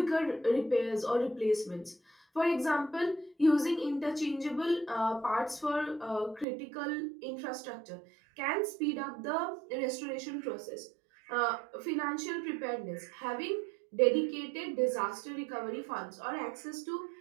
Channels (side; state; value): left; drops out; at 6.5 s